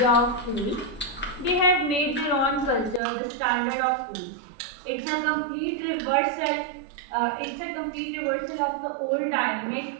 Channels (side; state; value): left; drops out; at 3.0 s